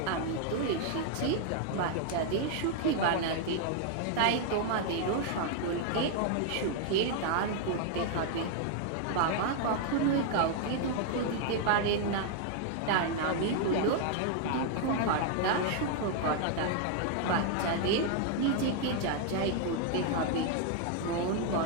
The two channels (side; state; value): both; different; correlation 0.00